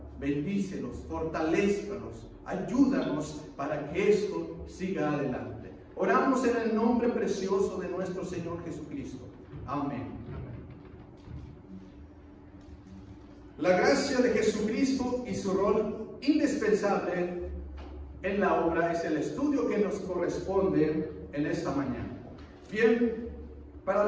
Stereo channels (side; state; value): both; identical; correlation 1.00